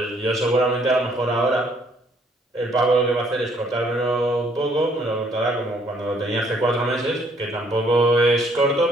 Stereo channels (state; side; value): normal; both; correlation 0.65